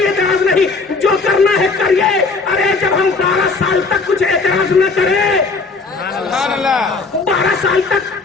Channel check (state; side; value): quieter; right; 4.1 dB